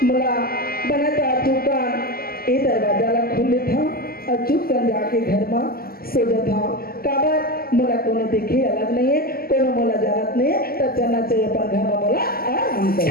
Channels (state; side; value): late; right; 0.43 ms